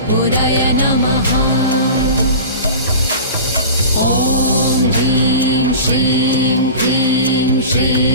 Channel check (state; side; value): inverted; both; correlation -0.35